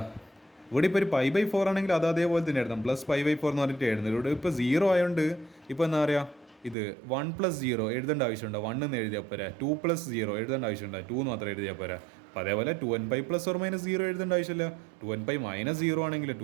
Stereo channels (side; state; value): left; drops out; at 6.8 s